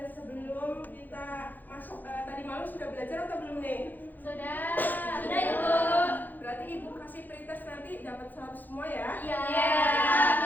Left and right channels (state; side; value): late; right; 0.085 ms